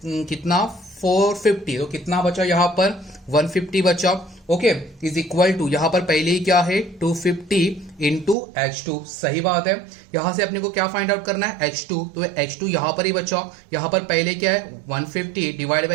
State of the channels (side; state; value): left; drops out; at 8.3 s